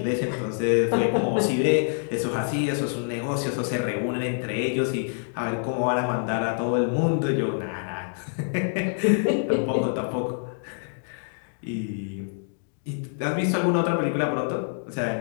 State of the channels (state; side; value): silent; right; digital silence